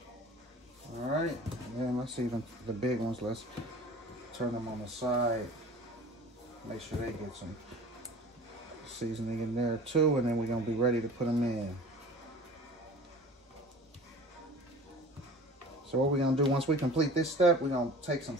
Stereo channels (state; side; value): normal; both; correlation 0.42